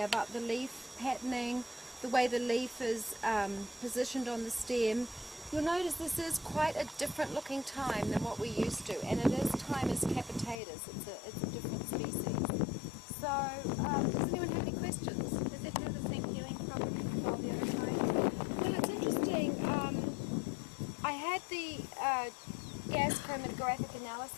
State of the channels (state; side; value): drops out; right; at 10.6 s